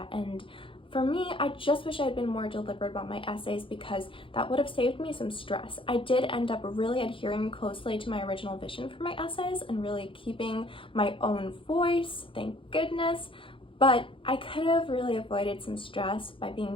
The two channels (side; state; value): right; late; 0.25 ms